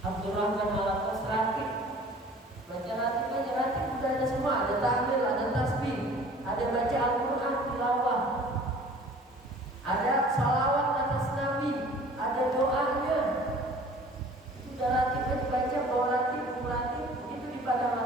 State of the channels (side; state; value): both; normal; correlation 0.48